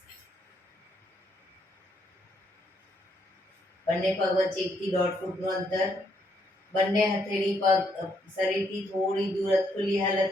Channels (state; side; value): normal; both; correlation 0.73